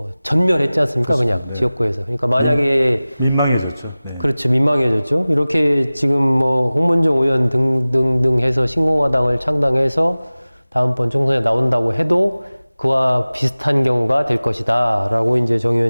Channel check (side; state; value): both; inverted; correlation -0.98